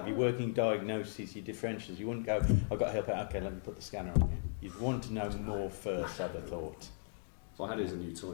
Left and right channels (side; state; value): right; silent; digital silence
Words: your working diagnosis, your differentials. You wouldn't go, I've got help out, okay, let me put the scanner on you. You'd want to know more first, I'd have thought. If I had it as a new toy,